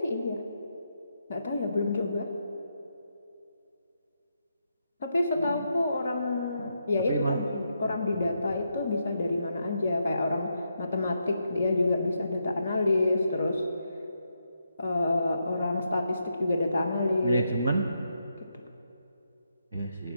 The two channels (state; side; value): inverted; both; correlation -0.82